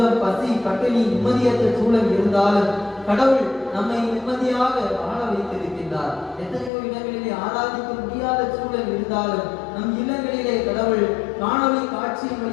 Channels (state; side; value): drops out; right; at 6.7 s